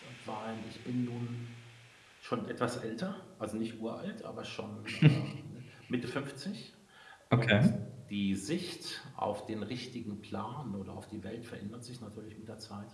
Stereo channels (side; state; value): both; identical; correlation 1.00